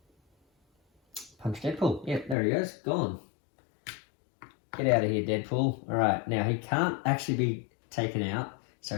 punch Deadpool. Yep, there he goes, gone. Get out of here, Deadpool. Alright, now he can't actually be taken out,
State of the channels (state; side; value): drops out; right; at 2.4 s